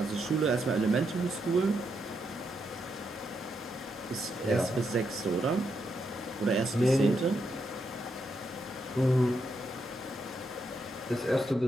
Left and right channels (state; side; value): normal; both; correlation 0.81